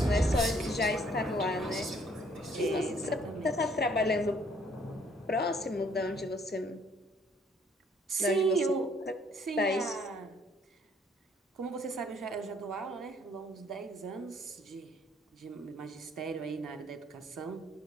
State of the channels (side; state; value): both; normal; correlation 0.63